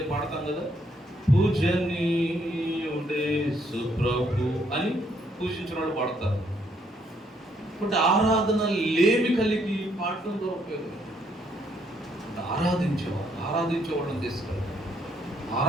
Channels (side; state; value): both; normal; correlation 0.70